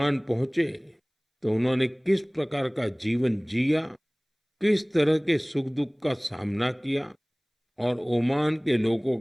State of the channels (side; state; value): both; identical; correlation 1.00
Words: पहुंचे तो उन्होंने किस प्रकार का जीवन जिया, किस तरह के सुख दुख का सामना किया और ओमान के लोगों